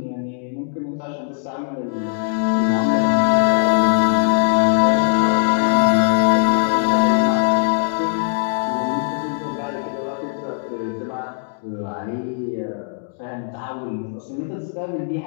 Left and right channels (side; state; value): right; silent; digital silence